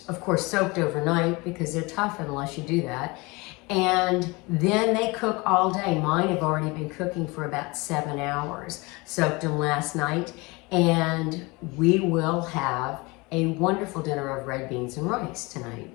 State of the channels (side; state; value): right; quieter; 25.2 dB